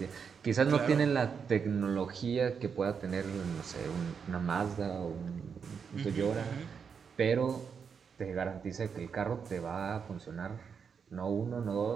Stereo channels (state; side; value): quieter; left; 6.4 dB